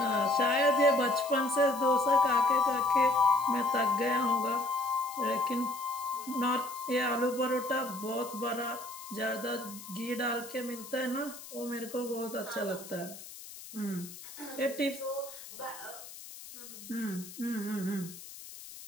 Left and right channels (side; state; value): left; noise; hiss, 14 dB below the sound